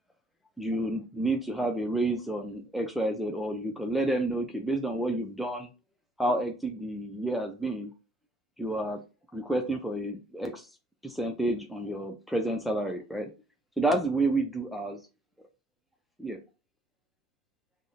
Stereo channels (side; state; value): both; normal; correlation 0.68